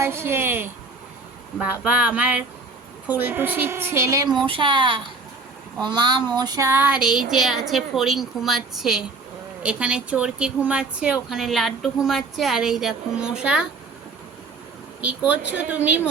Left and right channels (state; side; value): quieter; left; 4.0 dB